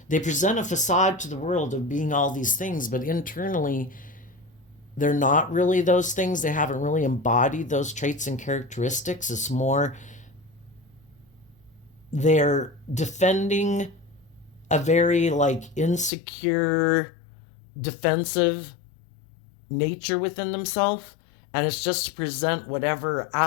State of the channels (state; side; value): drops out; right; at 16.1 s